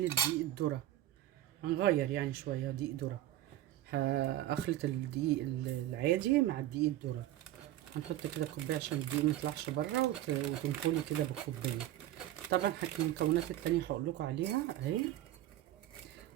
الدقيق الذره. هنغير يعني شويه دقيق ذره. هخلط الدقيق العادي مع الدقيق الذره. هنحط كده كوبايه عشان الدقيق ميطلعش بره وتنخلي كده بالكوبايه. طبعا المكونات التانية هقول لكم عليها اهي.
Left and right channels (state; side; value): quieter; left; 13.7 dB